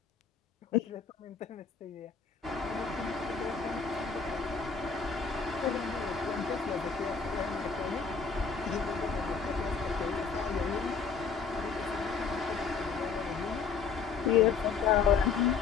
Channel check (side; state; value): right; quieter; 5.6 dB